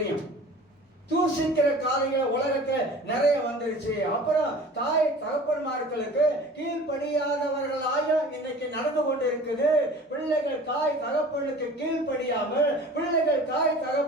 தூசிக்கிற காரியங்கள் உலகத்துல நிறைய வந்துருச்சு. அப்புறம் தாய் தகப்பன்மார்களுக்கு கீழ்ப்படியாதவர்களாக இன்னைக்கு நடந்து கொண்டு இருக்குது. பிள்ளைகள் தாய் தகப்பனுக்கு கீழ்ப்படியாமல் பிள்ளைகள் தாய்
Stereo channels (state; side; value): normal; both; correlation 0.43